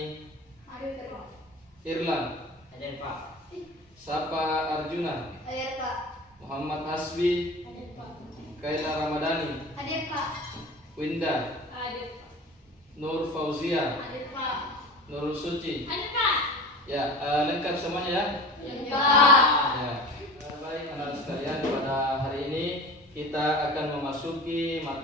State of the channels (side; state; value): both; normal; correlation 0.36